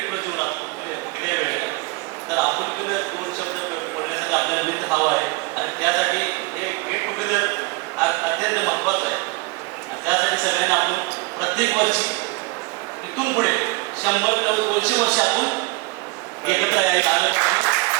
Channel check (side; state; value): left; quieter; 24.7 dB